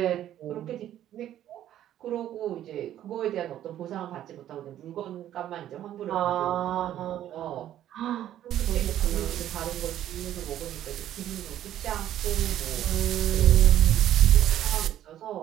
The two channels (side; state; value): left; quieter; 11.9 dB